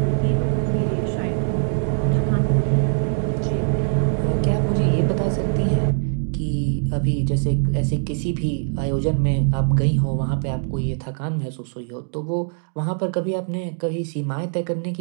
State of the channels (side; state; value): left; silent; digital silence